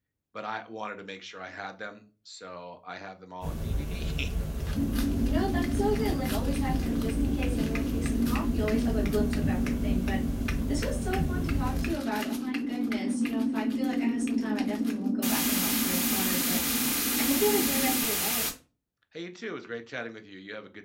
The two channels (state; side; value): identical; both; correlation 1.00